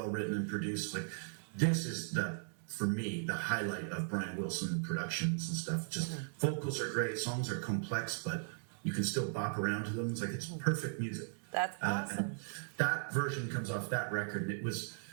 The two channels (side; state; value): left; silent; digital silence